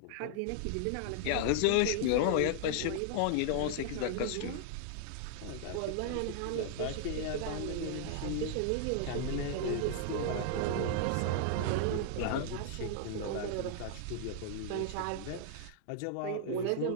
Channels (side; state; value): both; different; correlation 0.00